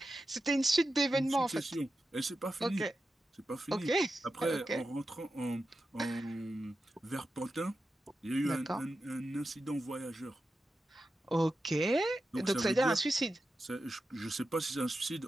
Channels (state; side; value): normal; both; correlation 0.91